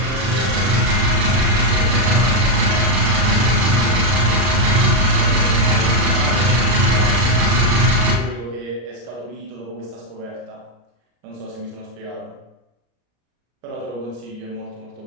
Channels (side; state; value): left; late; 33 ms